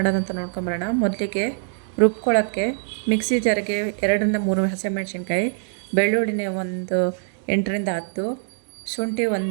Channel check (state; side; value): silent; left; 61 dB below the other